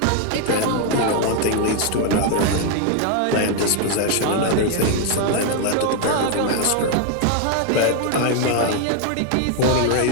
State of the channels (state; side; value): different; both; correlation 0.01